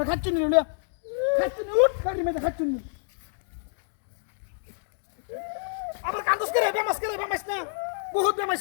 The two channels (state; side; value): silent; right; digital silence